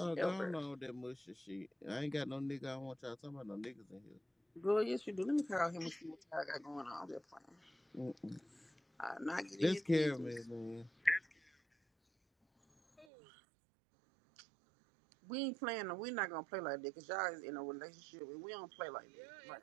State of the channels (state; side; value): drops out; left; at 13.1 s